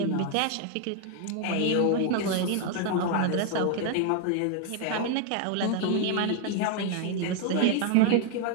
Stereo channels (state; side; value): different; both; correlation 0.00